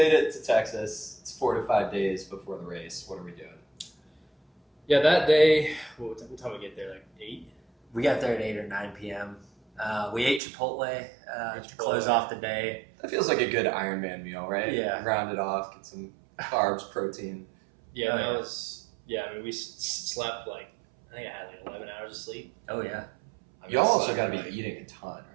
it to Texas. It's 4 to 5 days before the race. What are we doing? Yeah, that day. What time we get there? Like 8. We got there at 8 or 9 p.m. We ate Chipotle to Chipotle. close off the day. That feels like a good Ironman meal, right? Yeah. Round it off, get some carbs, protein. Yeah, Oh, that yeah. was. Yeah, I mean, we slept like I think I had like 11 hours of sleep. Oh yeah. I mean, Y'all I also slept, got to be like- eating a ton,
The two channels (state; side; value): drops out; left; at 10.4 s